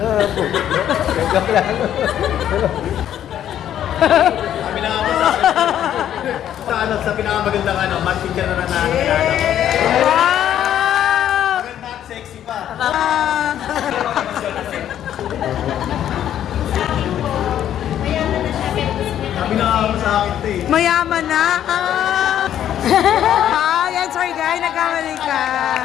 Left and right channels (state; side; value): quieter; right; 10.8 dB